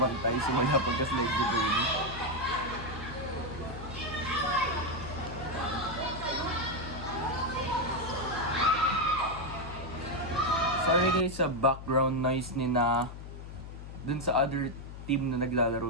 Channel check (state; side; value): noise; left; hum, 11 dB below the sound